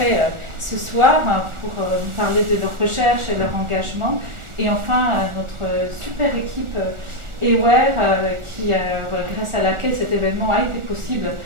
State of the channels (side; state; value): left; late; 1.4 ms